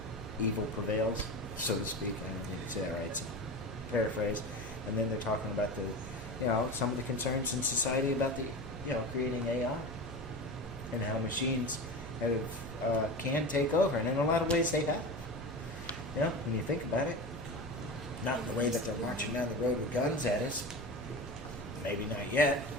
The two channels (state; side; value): noise; right; hum, 15 dB below the sound